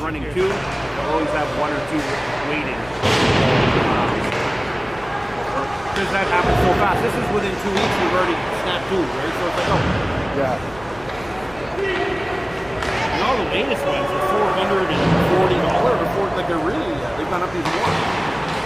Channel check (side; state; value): left; noise; rumble, 20 dB below the sound